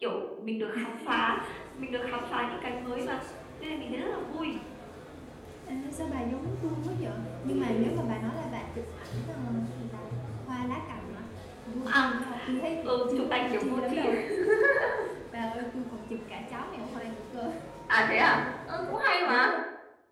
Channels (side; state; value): both; identical; correlation 1.00